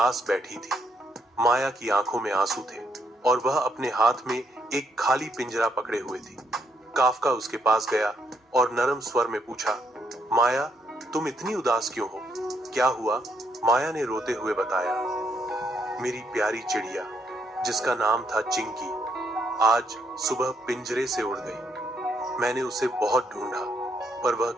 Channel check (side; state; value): both; normal; correlation 0.74